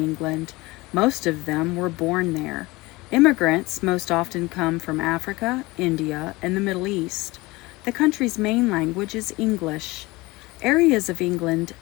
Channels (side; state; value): right; quieter; 21.7 dB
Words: Most of them were born there. Immigrants most often come from Africa, India, and the Middle East. The country's main language is English. Areas of England